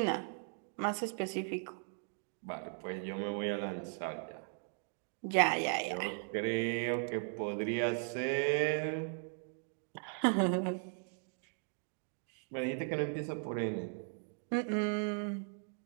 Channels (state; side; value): silent; left; 53 dB below the other